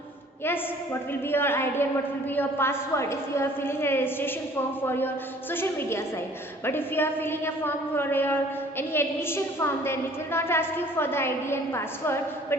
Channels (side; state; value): both; normal; correlation 0.53